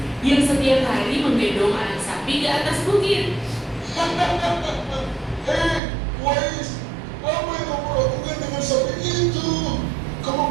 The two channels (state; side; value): drops out; left; at 5.8 s